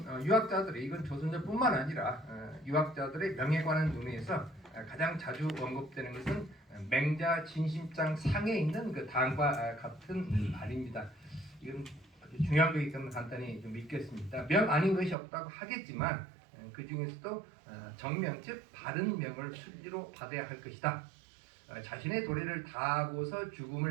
유학자들이, 이건 조선조뿐만 아니라 유학자들의 명에 관한 논의에서 가장 자주 언급되는 것은 맹자 진심장 상에 있는 그 당과 같은 말입니다. 이건 아주 중요한 거기 때문에 간단히 좀 읽겠습니다. 명 아닌 것이 없다고 하겠지만 그 중에서도 정명, 즉 바른 명을 순리로 받아야 할 것이다. 자신의 도리를 다하고서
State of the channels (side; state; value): left; drops out; at 15.2 s